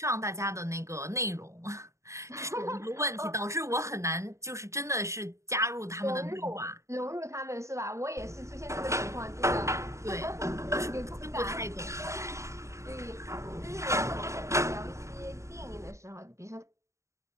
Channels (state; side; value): late; left; 0.14 ms